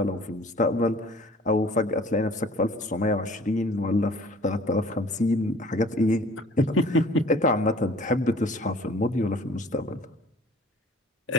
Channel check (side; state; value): both; normal; correlation 0.51